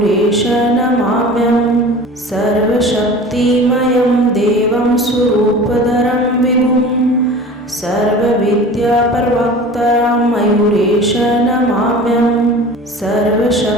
नमाम्यहम्। सर्वशक्तिमयं देवं स्वरूपधरं विभुम्। सर्वविद्याप्रवक्तारं मयूरेश नमाम्यहम्।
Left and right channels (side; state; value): both; normal; correlation 0.39